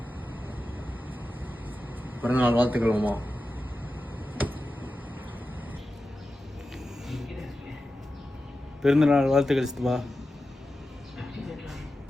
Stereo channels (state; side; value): normal; both; correlation 0.92